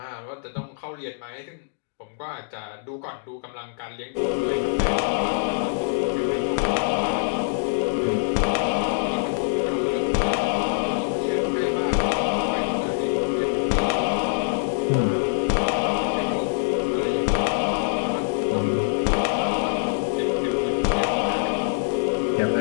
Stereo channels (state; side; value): silent; right; digital silence